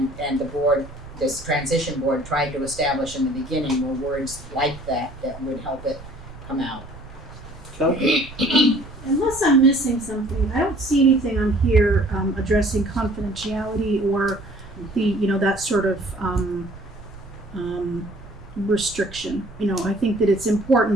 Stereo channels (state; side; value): noise; right; rumble, 17 dB below the sound